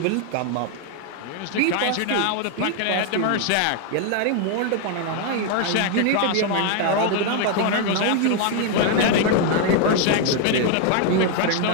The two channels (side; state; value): both; different; correlation 0.00